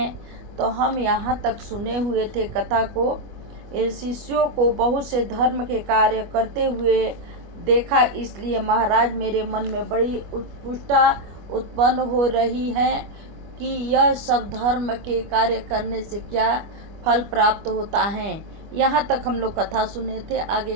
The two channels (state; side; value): late; left; 25 ms